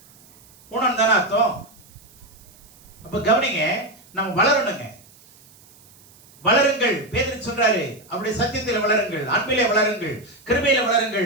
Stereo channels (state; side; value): noise; right; hiss, 26 dB below the sound